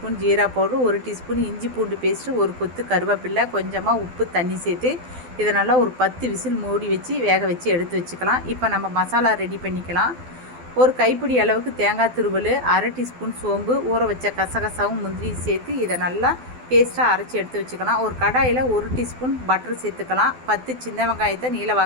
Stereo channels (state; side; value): late; left; 12 ms